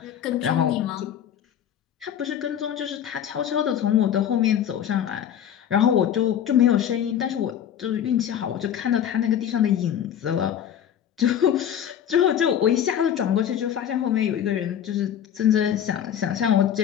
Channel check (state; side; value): quieter; right; 9.7 dB